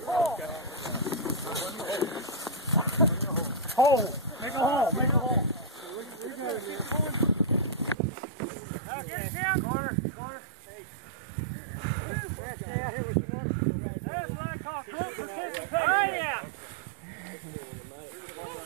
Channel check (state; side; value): drops out; left; at 8.0 s